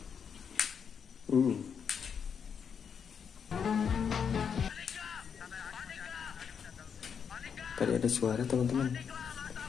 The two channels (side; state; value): right; quieter; 7.0 dB